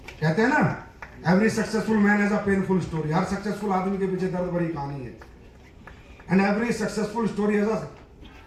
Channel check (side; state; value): both; identical; correlation 1.00